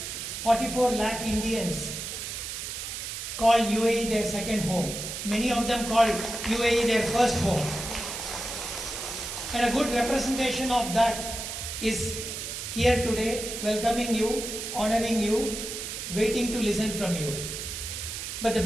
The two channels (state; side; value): noise; right; hiss, 6 dB below the sound